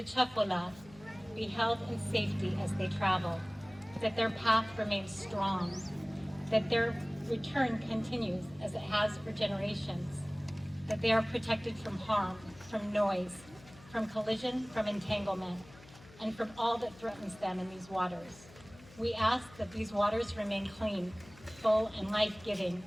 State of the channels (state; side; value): noise; left; hum, 21 dB below the sound